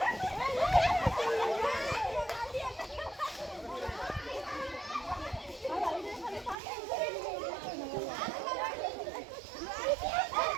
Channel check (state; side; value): drops out; left; at 6.6 s